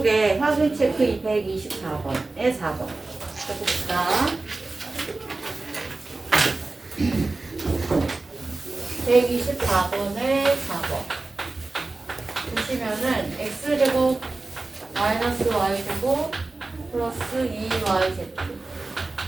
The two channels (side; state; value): left; quieter; 3.3 dB